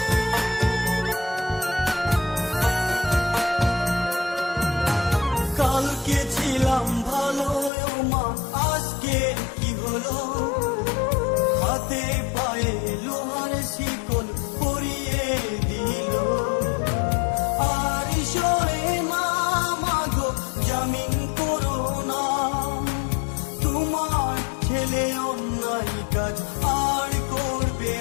কালকে ছিলাম ভালো ও মা, আজকে কি হলো? হাতে পায়ে লোহার শিকল পরিয়ে দিল। আর সরে না মাগো জামিন করো না, তোমার ছেলে অন্যায় কাজ আর করবে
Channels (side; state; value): right; drops out; at 7.7 s